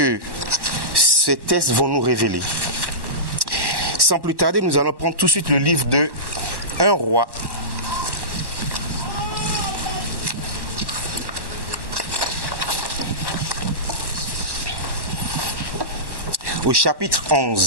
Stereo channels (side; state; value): left; late; 1.1 ms